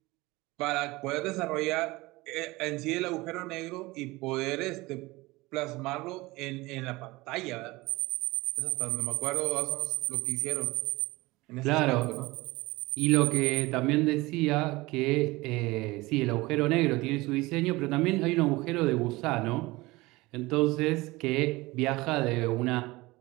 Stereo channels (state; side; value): quieter; left; 21.3 dB